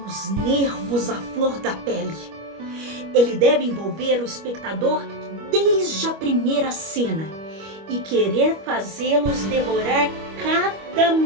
os nervos à flor da pele. Ele deve envolver o espectador desde a primeira cena e querer fazê-los devorar cada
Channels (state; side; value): late; left; 25 ms